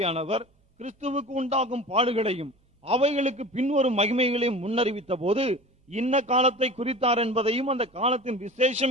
கிறிஸ்துவுக்கு உண்டாகும் பாடுகளையும் அவைகளுக்கு பின்வரும் மகிமைகளையும் முன்னறிவித்த போது இன்ன காலத்தை குறித்தார் என்பதையும் அந்த காலத்தின்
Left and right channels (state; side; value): normal; both; correlation 0.37